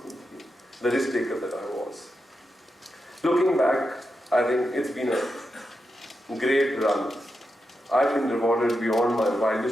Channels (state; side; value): normal; both; correlation 0.87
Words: the risk taker that I was. Looking back, I think it's been a great run. I've been rewarded beyond my